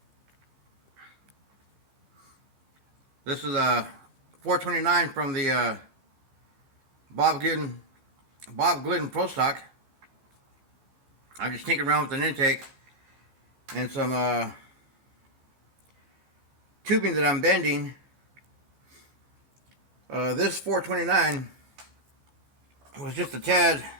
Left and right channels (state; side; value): late; left; 15 ms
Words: This is a 429 from the Bob Glidden Pro Stock. I'm just tinkering around with an intake and some tubing that I'm bending. This 429 was just a tad